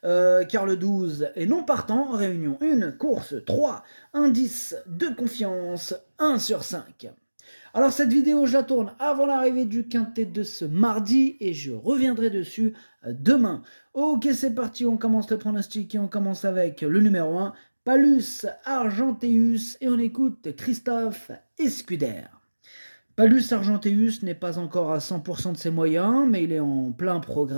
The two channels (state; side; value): inverted; both; correlation -1.00